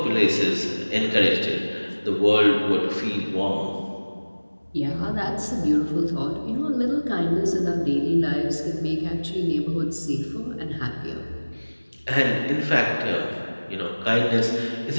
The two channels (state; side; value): inverted; both; correlation -1.00